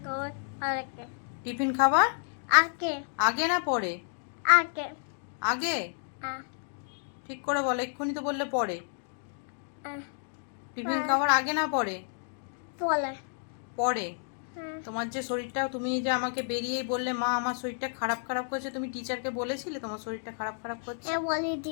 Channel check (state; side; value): silent; right; digital silence